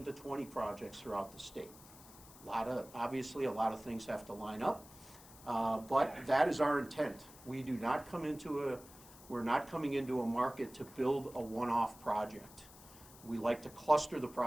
to 20 projects throughout the state. Obviously, a lot of things have to line up, but that is our intent. We're not coming into a market to build a one-off project. We like to cluster the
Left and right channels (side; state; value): left; noise; hiss, 20 dB below the sound